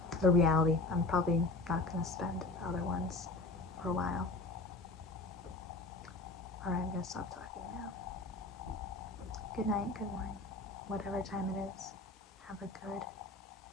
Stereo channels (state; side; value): quieter; right; 3.1 dB